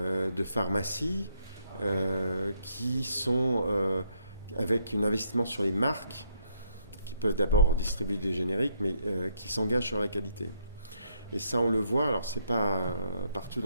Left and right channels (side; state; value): both; inverted; correlation -0.73